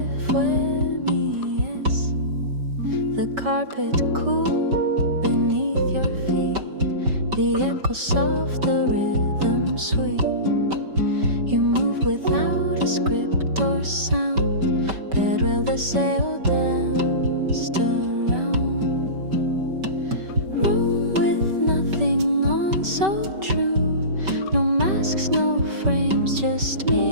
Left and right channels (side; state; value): left; late; 5.2 ms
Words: fue mi yes. The carpet cool beneath your feet, the echo soft, the rhythm sweet. You move without a script or sound, pero el deseo danced around. Room with nothing on, so true. No masks, no frames, just